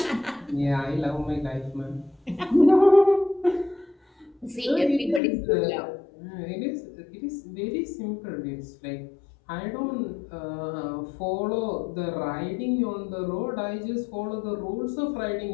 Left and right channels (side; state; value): right; drops out; at 5.2 s